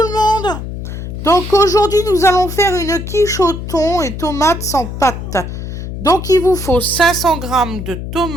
monde. Donc aujourd'hui nous allons faire une quiche au thon et tomates sans pâte. Donc il vous faut 500 g de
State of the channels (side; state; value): left; noise; hum, 7 dB below the sound